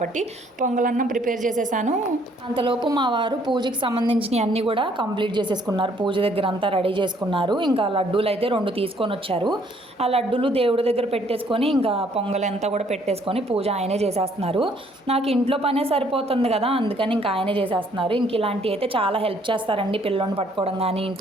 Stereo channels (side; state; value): both; normal; correlation 0.64